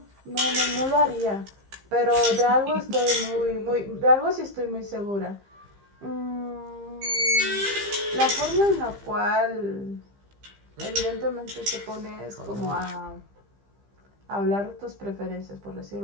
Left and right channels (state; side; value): late; left; 15 ms